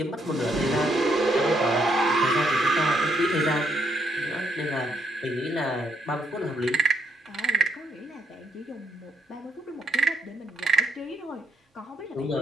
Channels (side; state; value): both; normal; correlation 0.74